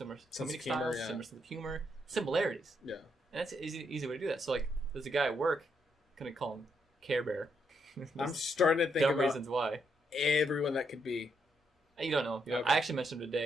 comedic styles, similar sense of humor, similarities. Yeah. And that's an easy way to do that. So, like, there's a guy at work, going to call him Care Bear. I'm starting to think about reasons why. Everyone that could be. You don't know. Okay. I actually mentioned him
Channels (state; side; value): normal; both; correlation 0.77